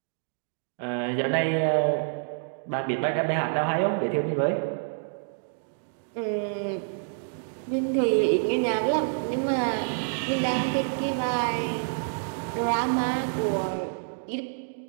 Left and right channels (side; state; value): left; silent; digital silence